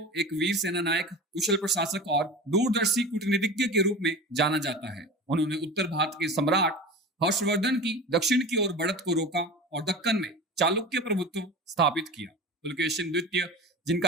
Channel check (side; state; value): both; normal; correlation 0.32